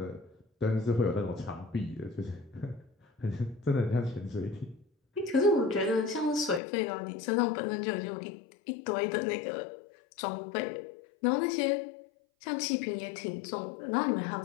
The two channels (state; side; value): drops out; right; at 6.6 s